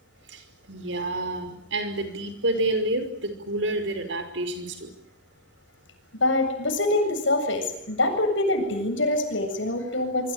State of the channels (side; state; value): both; normal; correlation -0.20